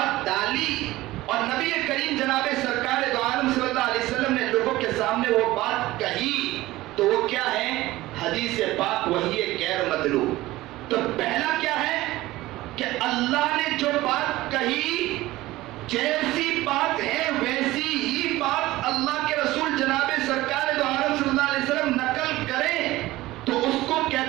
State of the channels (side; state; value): left; quieter; 17.7 dB